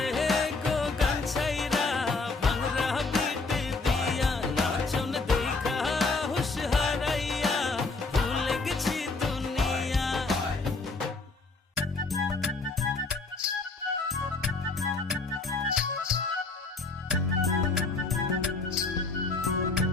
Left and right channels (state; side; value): quieter; right; 3.7 dB